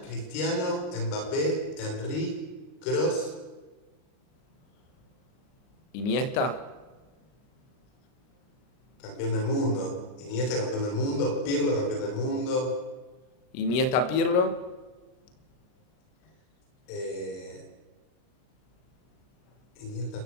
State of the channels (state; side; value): late; right; 39 ms